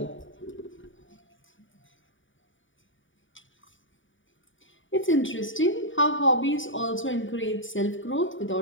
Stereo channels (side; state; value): right; late; 0.56 ms